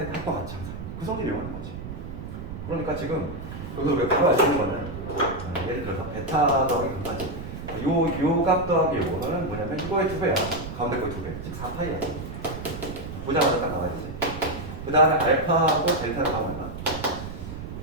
합과 같이 항상 그 성질을 이용하는 거지. 그러니까 지금 여기서 우리가 바로 알 수 있는 거는 예를 들어서 베타 더하기 감마지. 값 더하기 요거는 뭐냐면 이거의 2배야. 가운데 거의 2배. 즉 4파이야. 보자마자 딱 나와야 되지. 그 다음에 알파하고 델타를 하면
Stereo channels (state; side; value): noise; right; rumble, 9 dB below the sound